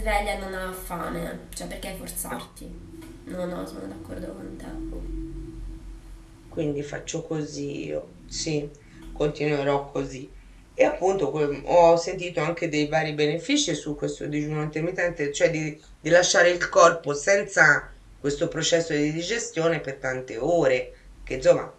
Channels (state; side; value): identical; both; correlation 1.00